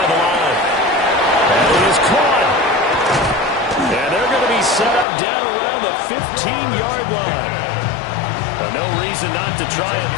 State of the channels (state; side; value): drops out; right; at 5.1 s